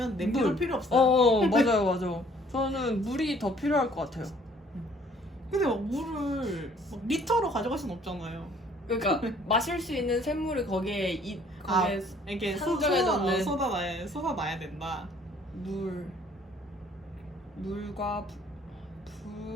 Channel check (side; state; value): both; normal; correlation 0.59